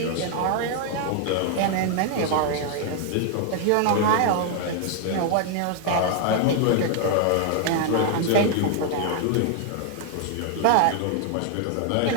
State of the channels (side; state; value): both; different; correlation 0.00